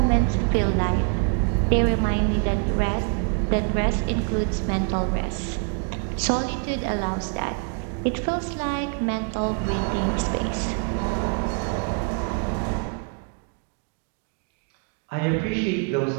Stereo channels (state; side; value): quieter; left; 38.1 dB